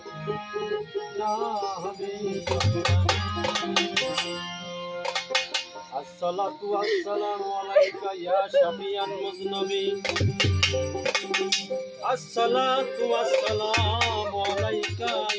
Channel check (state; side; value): identical; both; correlation 1.00